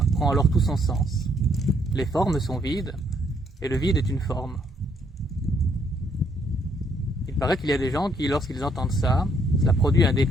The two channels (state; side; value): normal; both; correlation 0.70